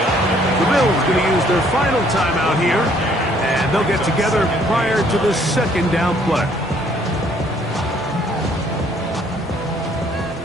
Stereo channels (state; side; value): normal; both; correlation 0.63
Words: The Bills going to use their final timeout here. And they'll get together prior to the second down play.